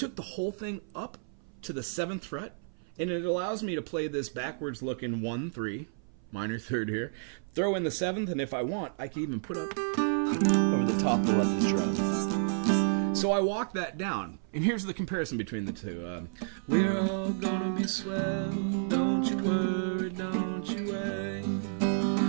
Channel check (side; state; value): left; silent; 56 dB below the other